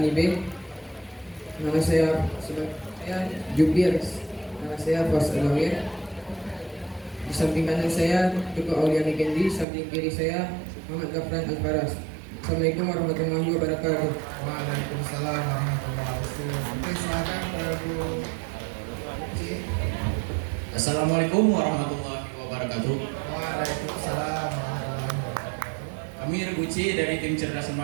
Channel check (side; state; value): left; drops out; at 9.7 s